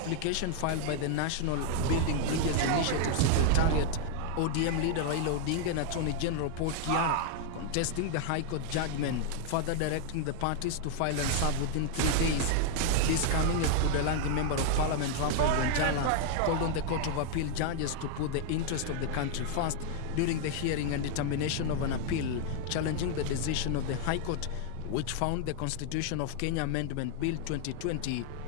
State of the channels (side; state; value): both; different; correlation 0.00